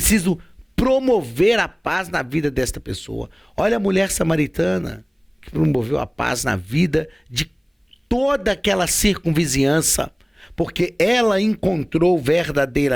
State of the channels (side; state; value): both; identical; correlation 1.00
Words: promover a paz na vida desta pessoa. Olha a mulher samaritana que promoveu a paz na vida de toda aquela circunvizinhança, porque ela encontrou